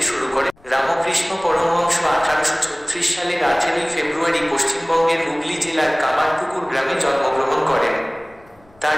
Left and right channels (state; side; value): noise; left; rumble, 30 dB below the sound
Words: শুরু করে। রামকৃষ্ণ পরমহংস 1836 সালের 18 ফেব্রুয়ারি পশ্চিমবঙ্গের হুগলি জেলার কামারপুকুর গ্রামে জন্মগ্রহণ করেন। তার